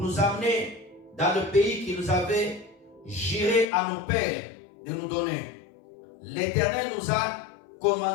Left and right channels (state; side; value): drops out; right; at 3.7 s